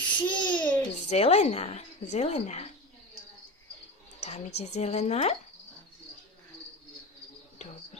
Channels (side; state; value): both; normal; correlation 0.27